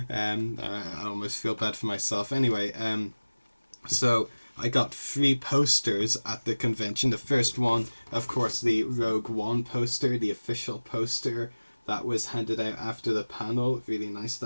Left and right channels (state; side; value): inverted; both; correlation -1.00